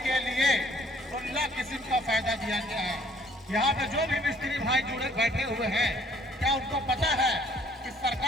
के लिए 16 किस्म का फायदा दिया गया है। यहाँ पे जो भी मिस्त्री भाई जुड़े बैठे हुए हैं, क्या उनको पता है कि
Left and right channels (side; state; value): both; normal; correlation 0.59